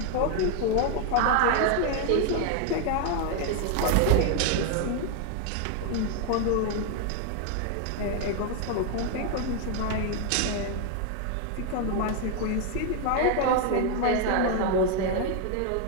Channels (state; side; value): different; both; correlation 0.01